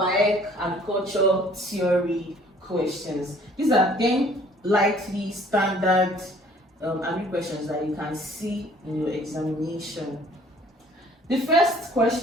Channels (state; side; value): normal; both; correlation 0.56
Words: agricultural theory questions. These are 10 likely standard agri questions that you can see in your examination. The first